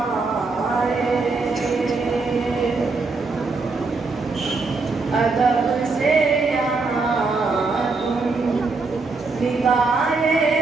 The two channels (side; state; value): left; quieter; 4.0 dB